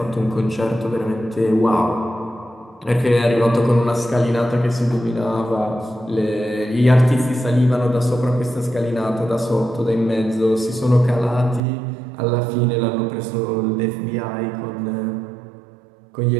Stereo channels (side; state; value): left; drops out; at 11.6 s